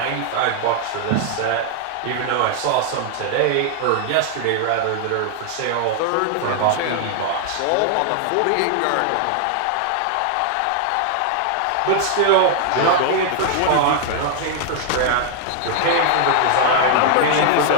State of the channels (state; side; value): different; both; correlation 0.00